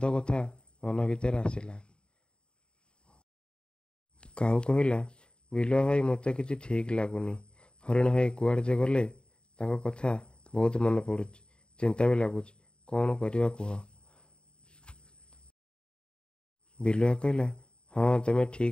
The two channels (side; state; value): right; late; 0.051 ms